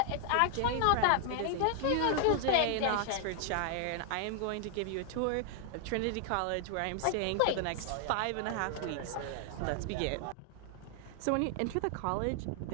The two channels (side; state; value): both; different; correlation 0.00